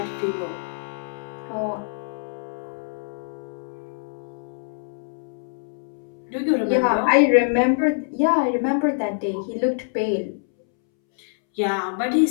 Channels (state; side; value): silent; right; 62 dB below the other